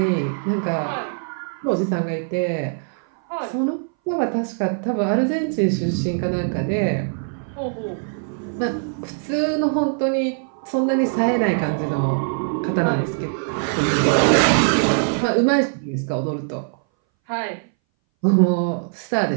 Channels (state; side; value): silent; left; 61 dB below the other